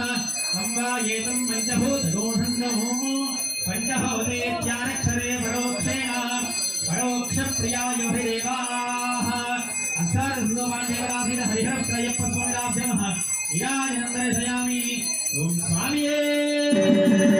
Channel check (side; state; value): both; identical; correlation 1.00